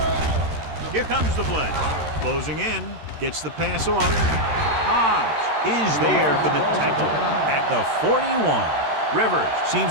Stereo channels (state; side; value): late; left; 13 ms